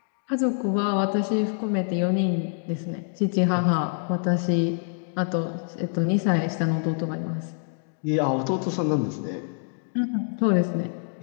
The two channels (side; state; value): right; silent; 58 dB below the other